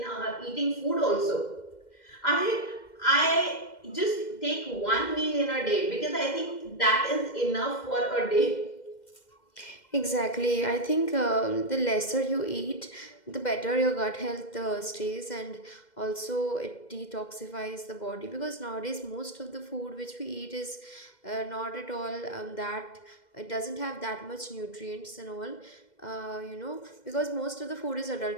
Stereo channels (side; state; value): right; late; 2.1 ms